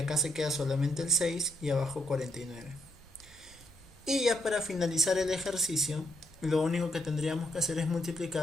se queda solamente el 6 y abajo 49. Y ya para finalizar el ejercicio, lo único que tendríamos que hacer es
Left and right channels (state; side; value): normal; both; correlation 0.75